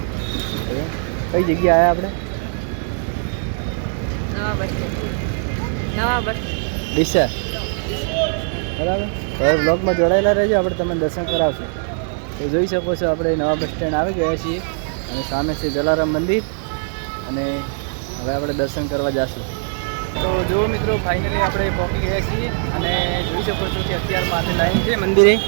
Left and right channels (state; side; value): silent; left; 62 dB below the other